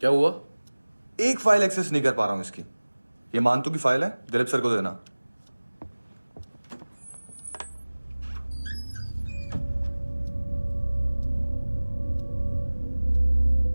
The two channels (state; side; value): inverted; both; correlation -1.00